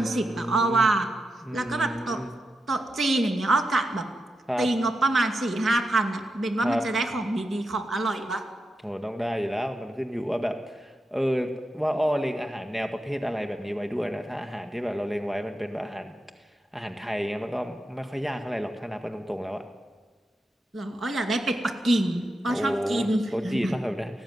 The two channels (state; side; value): normal; both; correlation 0.87